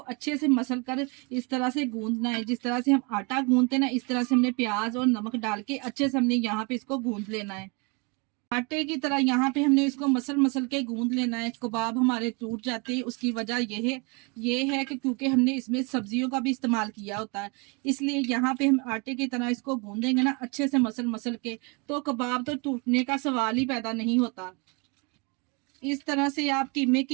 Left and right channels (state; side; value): quieter; left; 30.9 dB